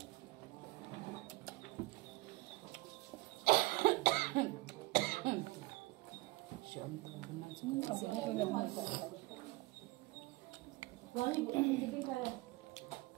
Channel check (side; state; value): left; quieter; 21.6 dB